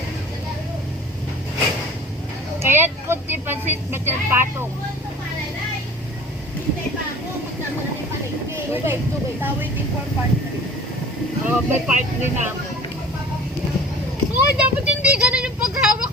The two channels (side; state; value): both; normal; correlation 0.43